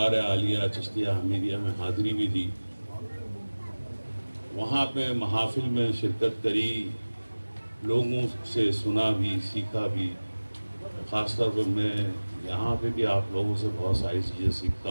عالیہ چشتیہ حمیدیہ میں حاضری بھی دی، وہاں پہ محافل میں شرکت کری، لوگوں سے سنا بھی سیکھا بھی، خاص طور پہ میں یہاں پہ بھی آپ لوگوں سے بہت ساری چیزیں سیکھتا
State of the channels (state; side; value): inverted; both; correlation -1.00